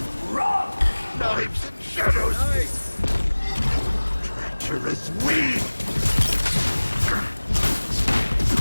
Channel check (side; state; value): both; inverted; correlation -1.00